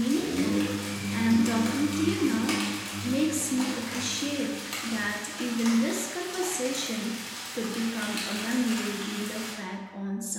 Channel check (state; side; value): identical; both; correlation 1.00